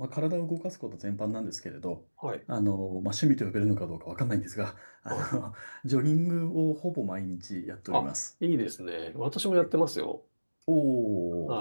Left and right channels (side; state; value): both; inverted; correlation -1.00